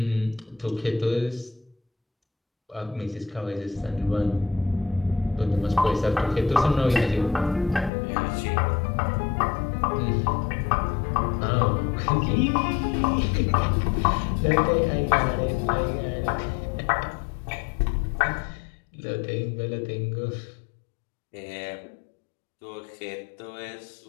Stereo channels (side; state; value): right; drops out; at 7.9 s